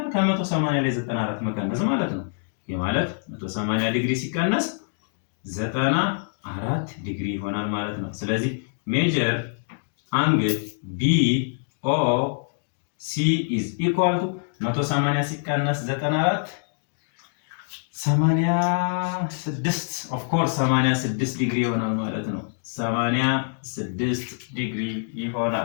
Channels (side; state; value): right; silent; digital silence